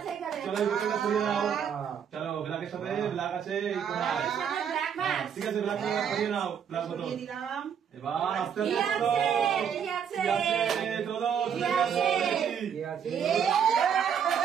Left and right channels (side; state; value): left; quieter; 7.9 dB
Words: চলো বোতলটা সরিয়ে দাও। চলো ব্ল্যাকের সাথে ব্ল্যাক আছে, ঠিক আছে ব্ল্যাক সরিয়ে নাও। ব্ল্যাক বোতল এবার আস্তে আস্তে চলো